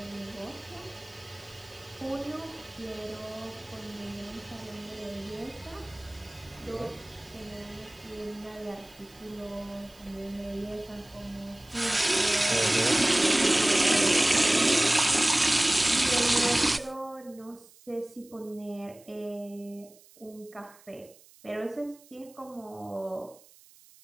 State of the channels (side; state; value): right; noise; hiss, 25 dB below the sound